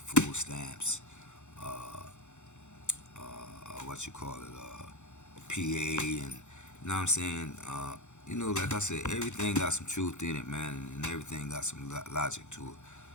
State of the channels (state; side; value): late; right; 0.83 ms